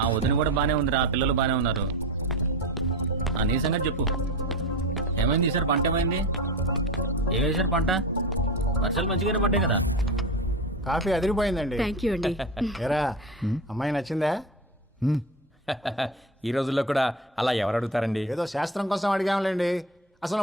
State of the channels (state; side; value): normal; both; correlation 0.24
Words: వదిన కూడా బానే ఉందిరా. పిల్లలు బానే ఉన్నారు. నీ సంగతి చెప్పు. ఏమైంది ఈసారి? పంట ఏమైంది? ఏం వేసారు పంట? వర్షాలు మంచిగానే పడ్డాయి కదా. కాఫీ అదిరిపోయిందండి. థ్యాంక్ యూ అండి. ఏరా అమ్మాయి నచ్చిందా? ఈ రోజుల్లో కూడా అలా ఎవరు అడుగుతారండి? ఏదో శాస్త్రం కోసం అడిగాంలేండి.